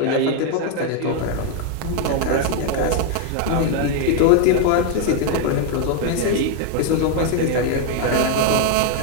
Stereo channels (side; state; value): both; different; correlation 0.00